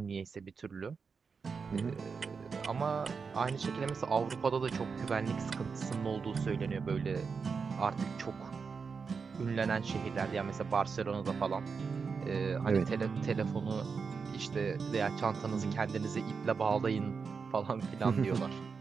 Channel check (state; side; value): quieter; left; 5.4 dB